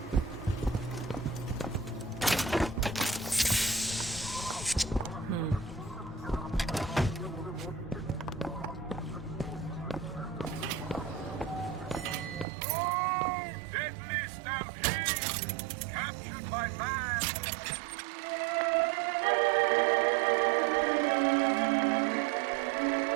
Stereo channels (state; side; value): drops out; left; at 12.5 s